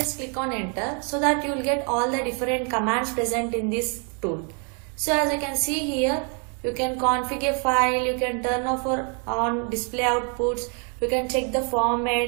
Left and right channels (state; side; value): quieter; left; 39.3 dB